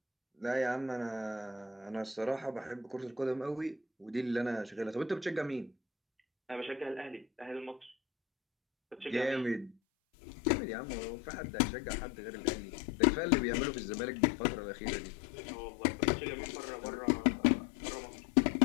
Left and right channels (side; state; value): right; drops out; at 9.8 s